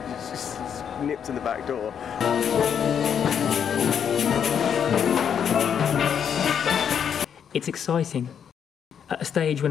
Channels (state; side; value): quieter; right; 8.0 dB